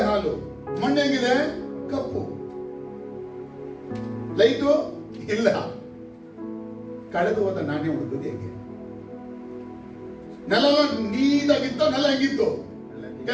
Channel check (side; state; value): both; identical; correlation 1.00